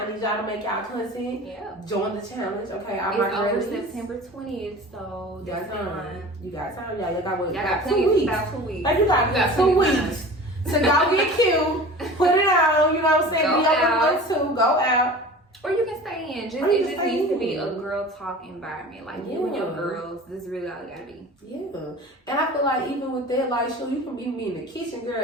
need y'all to make y'all content. Yeah. Join the challenge, okay? It's over September 20th, so that's time. You got time, y'all. You got what? Y'all got 2 weeks. About 2 weeks. Like, you got 2 weeks to go get cute, put it on. You know what I'm saying? Be up to go out. Or you can stay in. It just needs to be a girl talk environment. Like, you and your girls, this is really all it gotta be. Yeah. And I feel like even with that, like, sure, you can be me in the kitchen,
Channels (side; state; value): both; normal; correlation 0.39